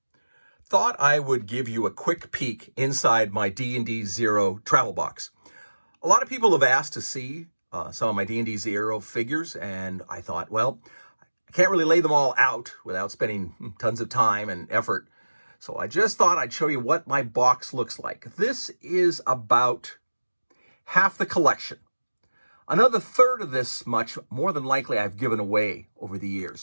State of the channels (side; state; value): both; inverted; correlation -1.00